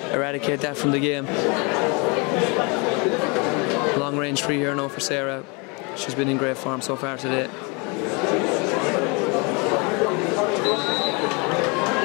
eradicate that from the game. Long range free here now for Sarah. She's been in great form so far today.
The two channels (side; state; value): right; quieter; 30.5 dB